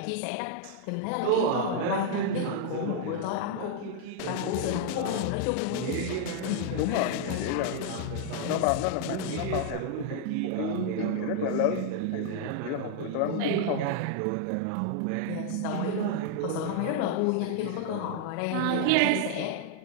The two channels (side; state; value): both; different; correlation 0.00